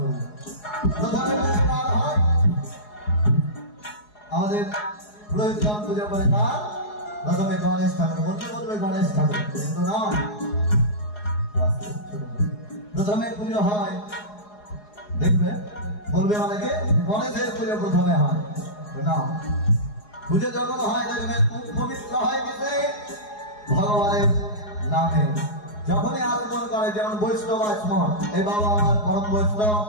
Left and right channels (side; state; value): right; late; 4.8 ms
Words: প্রথমে হয় আমাদের পুরোহিতগণ পুজো করে কার? প্রথমে গণেশ ঠাকুর। বলতে বলবে গণেশ ঠাকুর, কিন্তু নয়, প্রথমে পুজো হয় দেখবে বলবে অনেকে গণেশের পুজো প্রথমে হয় না। পুজো যখন হয় দেখবেন পবিত্র হয় কিসে? ভগবানের নামে। যখনই আগমন করে, যেমন বৈষ্ণব আচমন, এই বাবা আমার পরম বৈষ্ণব,